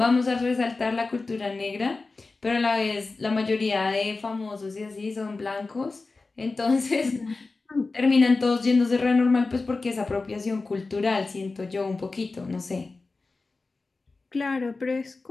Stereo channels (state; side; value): quieter; right; 3.7 dB